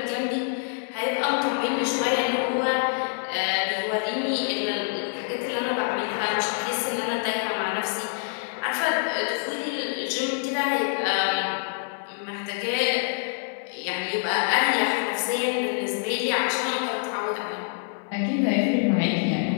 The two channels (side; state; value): right; silent; 61 dB below the other